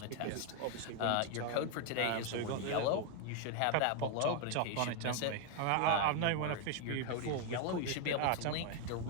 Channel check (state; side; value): different; both; correlation 0.01